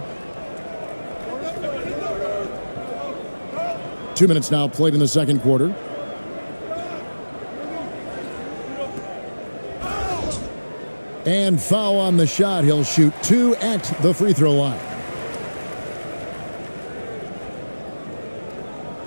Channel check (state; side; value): inverted; both; correlation -1.00